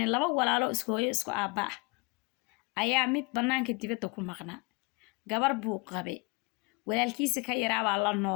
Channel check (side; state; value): right; quieter; 28.0 dB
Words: لبا walaalo isku hooyo isku aaba ayaa mid banaanka dibadda ku maqnaa gabar buu qabay walaalkiisa ka yaraaba la